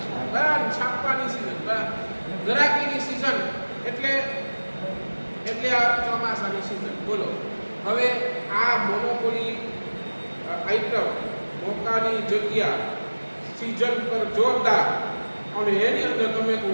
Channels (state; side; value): inverted; both; correlation -1.00